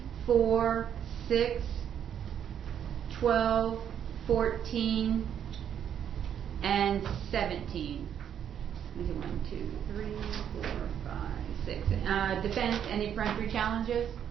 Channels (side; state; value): left; quieter; 9.1 dB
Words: 4, 6, 12, 14, and 17. Let's see, 1, 2, 3, 4, 5, 6. Defense, any peremptory challenges?